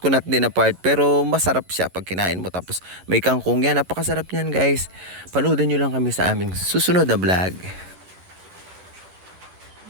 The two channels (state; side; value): late; left; 11 ms